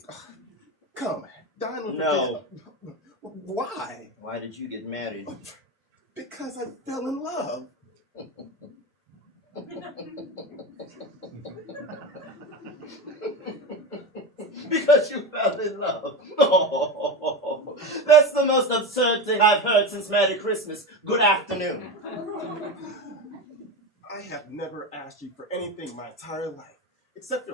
Come, dine with me. No. Why? Why did you get married? Because I fell in love. Because you fell in love. Oh, that's the most absurd thing I've heard since Merry Christmas. Good afternoon. I have never asked you for anything my entire life, except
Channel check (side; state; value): both; normal; correlation 0.22